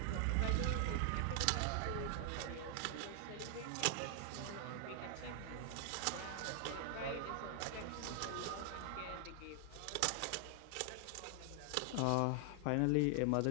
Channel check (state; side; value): different; both; correlation 0.00